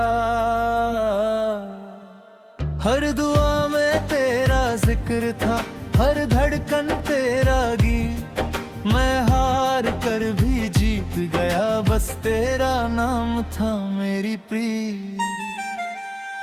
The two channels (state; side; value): identical; both; correlation 1.00